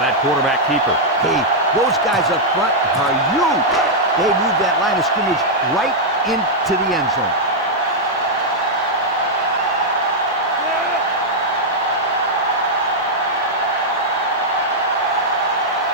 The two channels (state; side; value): normal; both; correlation -0.04